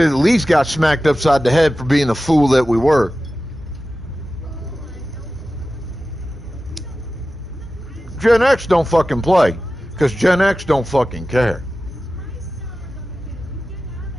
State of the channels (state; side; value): normal; both; correlation 0.95